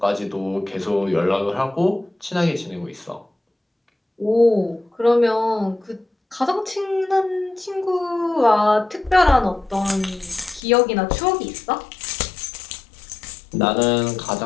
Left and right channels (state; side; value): drops out; right; at 10.6 s